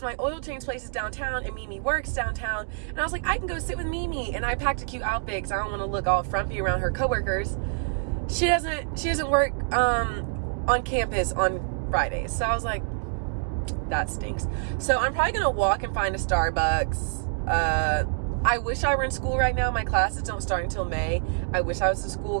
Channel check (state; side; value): silent; left; digital silence